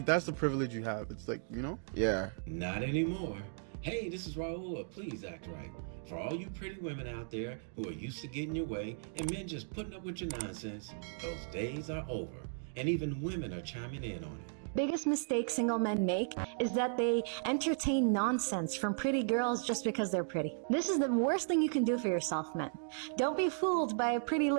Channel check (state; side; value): silent; left; digital silence